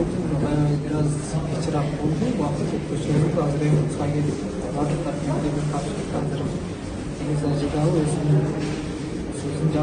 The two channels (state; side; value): identical; both; correlation 1.00